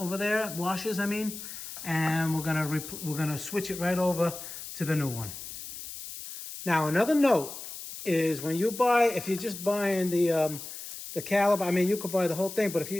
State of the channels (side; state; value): left; noise; hiss, 10 dB below the sound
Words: there, washers, I mean, and we're going to switch it right over to the new one. Now, another note is when you if you're just buying the caliper, I mean, you could buy the whole thing, but if